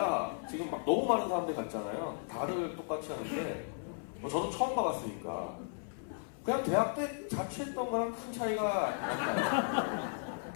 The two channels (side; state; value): right; silent; 54 dB below the other